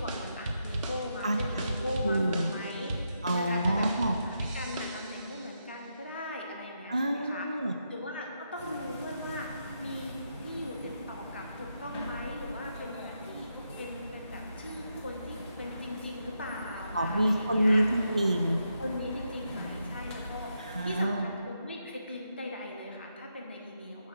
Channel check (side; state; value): both; inverted; correlation -0.82